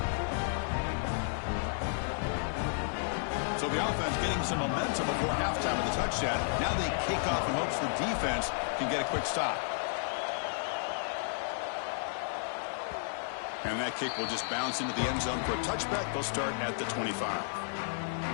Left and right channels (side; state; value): right; silent; digital silence